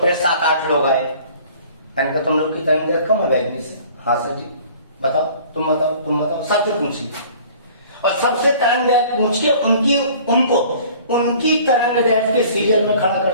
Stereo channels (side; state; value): both; inverted; correlation -0.50